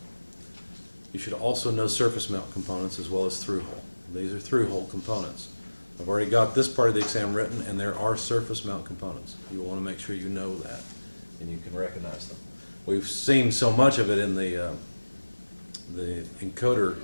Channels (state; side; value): inverted; both; correlation -1.00